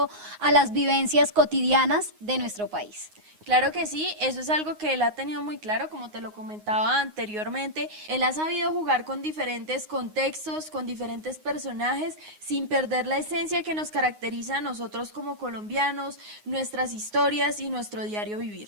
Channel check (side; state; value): left; late; 9.6 ms